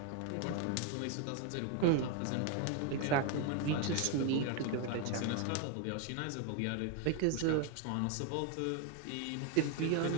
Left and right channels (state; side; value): different; both; correlation 0.01